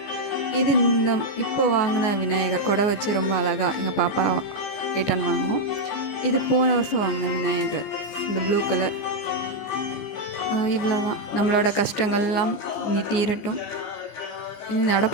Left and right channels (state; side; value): late; right; 14 ms